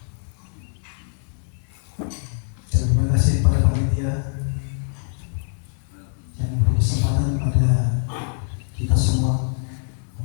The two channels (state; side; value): silent; right; digital silence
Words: Dan terima kasih pada panitia yang memberi kesempatan pada kita semua